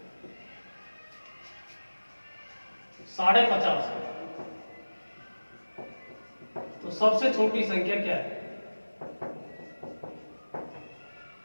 50.5 है, तो सबसे छोटी संख्या क्या है।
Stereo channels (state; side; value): inverted; both; correlation -1.00